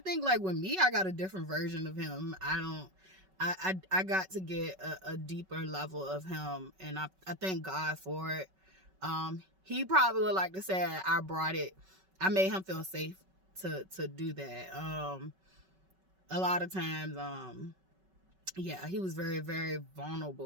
think, like, with me, I got a different version of him. I got to get a deeper level of him, and I thank God for it. He probably would like to say I made him feel safe to do that. A lot of times, yeah, he was very, very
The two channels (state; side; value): late; left; 5.3 ms